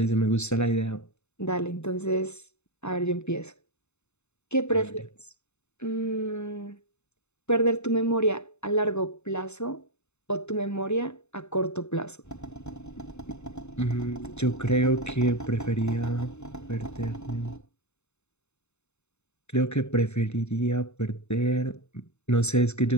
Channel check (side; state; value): right; late; 0.82 ms